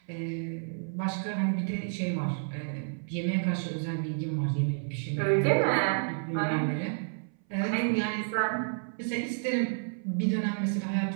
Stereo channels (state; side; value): silent; left; 58 dB below the other